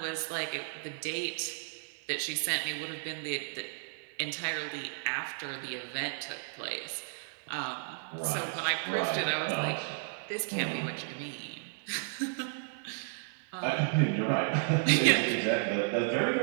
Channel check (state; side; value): silent; left; 56 dB below the other